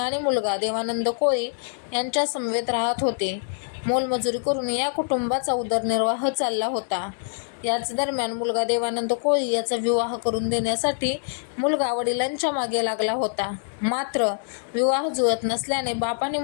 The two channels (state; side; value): silent; right; digital silence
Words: मुलगा देवानंद कोळी यांच्या समवेत राहत होते. मोलमजुरी करून या कुटुंबाचा उदरनिर्वाह चालला होता. याच दरम्यान मुलगा देवानंद कोळी याचा विवाह करून देण्यासाठी मुलगा वडिलांच्या मागे लागला होता. मात्र विवाह जुळत नसल्याने बाप आणि